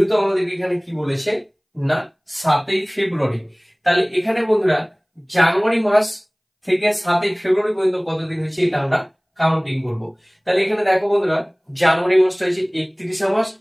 আমাদের এখানে কি বলেছে না 7 ফেব্রুয়ারি, তাহলে এখানে বন্ধুরা জানুয়ারি মাস থেকে 7 ফেব্রুয়ারি পর্যন্ত কত দিন হচ্ছে এটা আমরা কাউন্টিং করব। তাহলে এখানে দেখো বন্ধুরা জানুয়ারি মাসটা হচ্ছে 31 মাস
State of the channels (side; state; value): both; identical; correlation 1.00